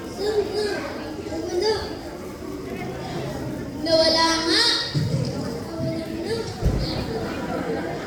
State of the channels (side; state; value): both; identical; correlation 1.00